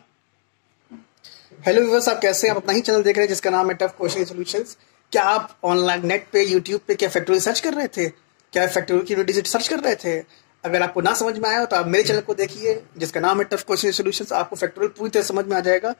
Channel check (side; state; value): right; silent; digital silence